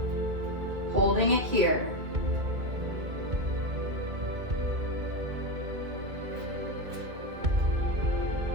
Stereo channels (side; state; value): left; late; 2.0 ms